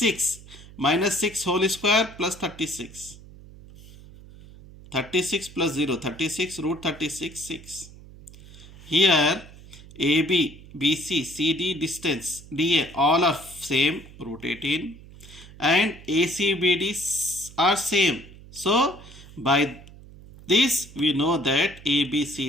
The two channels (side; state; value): right; noise; hum, 19 dB below the sound